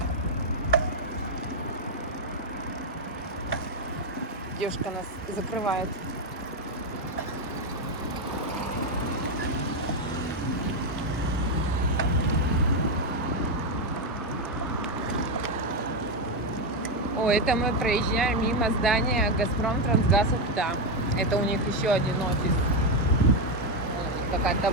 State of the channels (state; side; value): normal; both; correlation 0.06